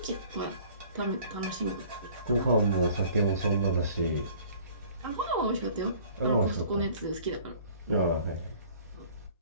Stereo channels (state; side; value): inverted; both; correlation -0.51